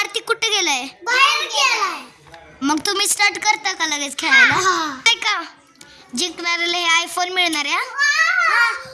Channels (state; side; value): identical; both; correlation 1.00